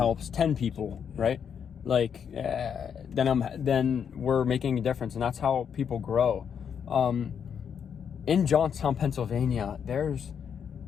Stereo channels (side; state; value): right; quieter; 7.6 dB